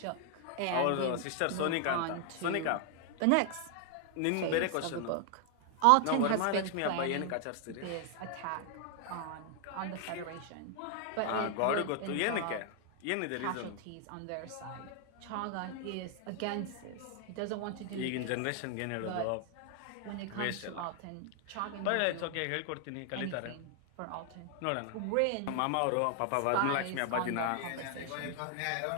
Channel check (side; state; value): both; different; correlation 0.00